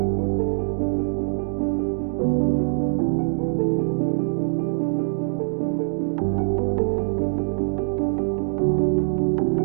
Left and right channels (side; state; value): left; silent; digital silence